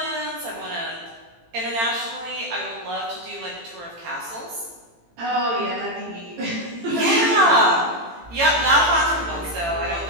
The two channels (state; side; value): late; left; 18 ms